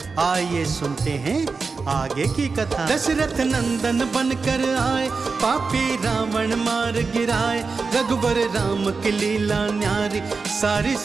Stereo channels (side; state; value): left; quieter; 4.5 dB